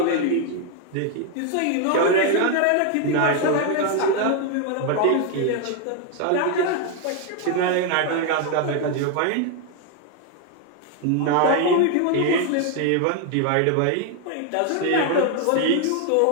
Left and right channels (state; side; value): different; both; correlation 0.01